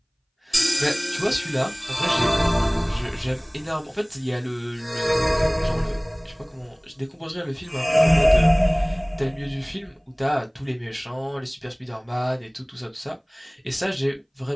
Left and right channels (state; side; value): identical; both; correlation 1.00